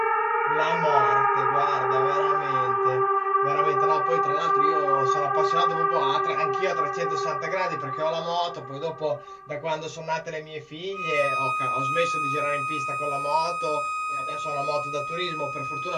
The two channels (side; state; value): both; identical; correlation 1.00